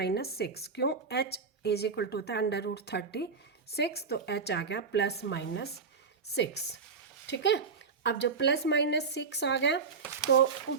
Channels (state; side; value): quieter; left; 5.1 dB